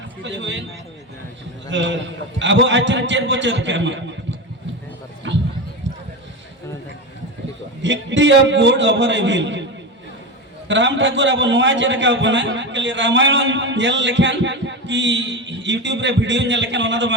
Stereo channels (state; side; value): normal; both; correlation 0.20